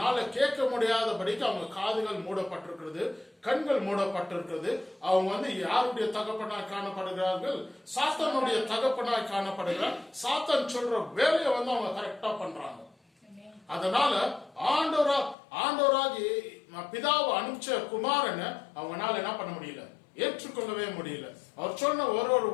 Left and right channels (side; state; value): right; drops out; at 15.4 s